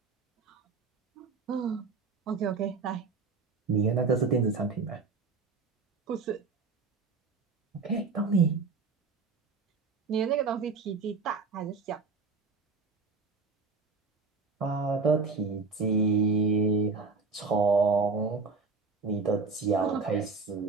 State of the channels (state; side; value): quieter; left; 4.4 dB